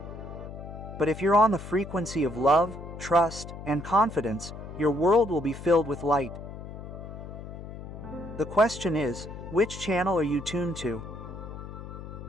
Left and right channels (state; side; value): noise; left; hum, 11 dB below the sound